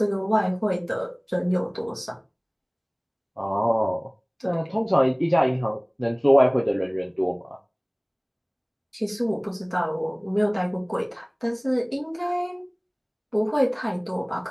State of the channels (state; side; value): identical; both; correlation 1.00